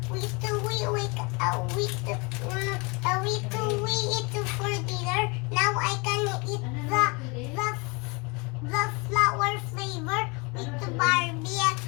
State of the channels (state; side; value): quieter; right; 29.0 dB